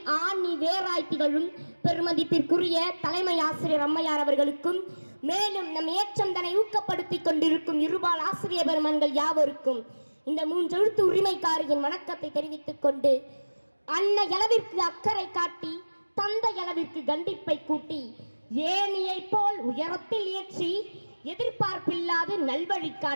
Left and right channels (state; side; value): inverted; both; correlation -1.00